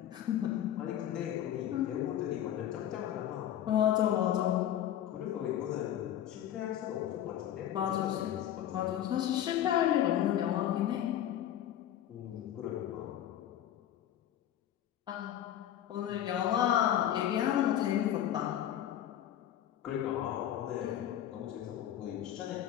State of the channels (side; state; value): right; quieter; 11.3 dB